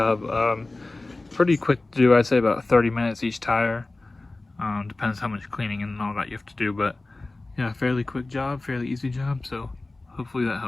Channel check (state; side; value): quieter; right; 3.1 dB